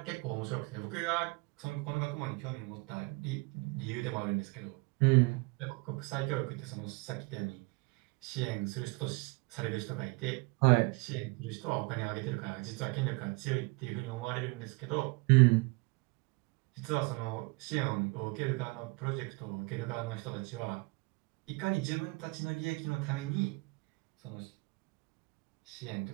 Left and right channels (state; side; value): quieter; left; 26.5 dB